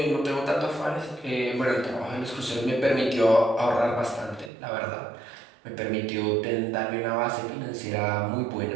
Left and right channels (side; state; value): left; drops out; at 4.5 s